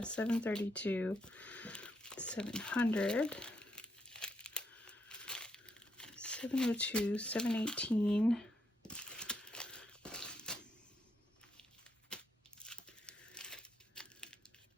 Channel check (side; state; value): both; normal; correlation 0.77